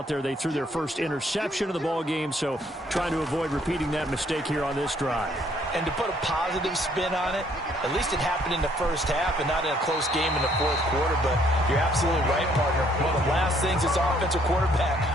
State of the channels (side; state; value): both; normal; correlation 0.65